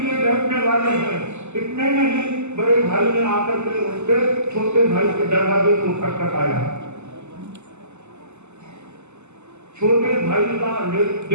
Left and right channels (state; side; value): late; left; 0.83 ms